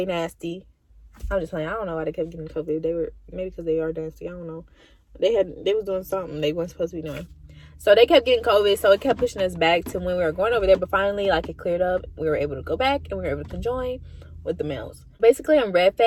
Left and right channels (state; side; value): identical; both; correlation 1.00